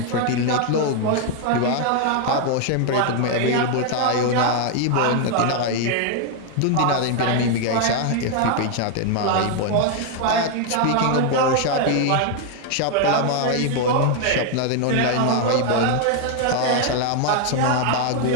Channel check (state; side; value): different; both; correlation 0.00